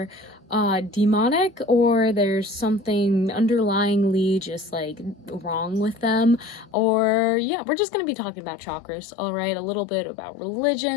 demonic or there's something underlyingly just like wrong with them, or yeah, we're just going to be talking about chakras. All right, a little bit about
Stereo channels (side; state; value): right; drops out; at 6.8 s